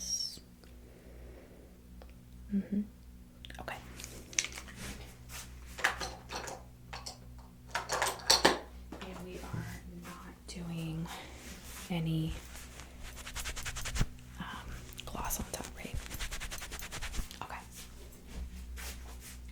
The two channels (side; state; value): both; identical; correlation 1.00